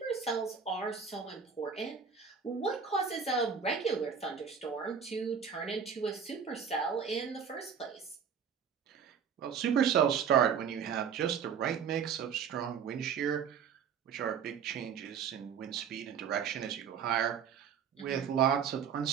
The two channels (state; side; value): quieter; left; 7.1 dB